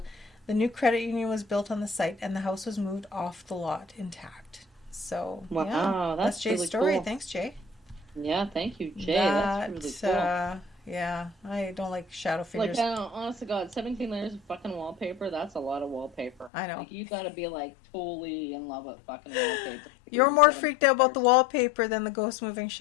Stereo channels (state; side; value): drops out; right; at 16.5 s